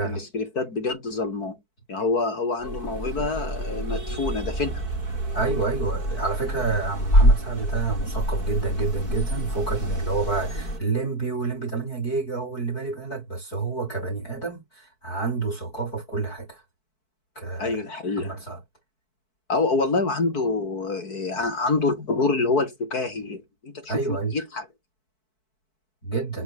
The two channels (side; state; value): right; late; 4.6 ms